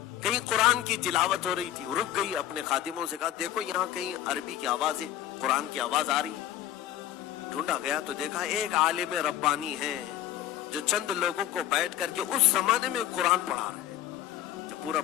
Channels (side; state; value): right; quieter; 12.1 dB